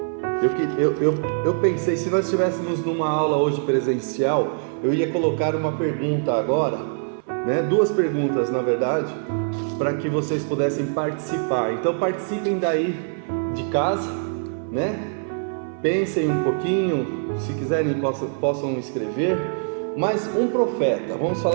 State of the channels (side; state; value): left; silent; 57 dB below the other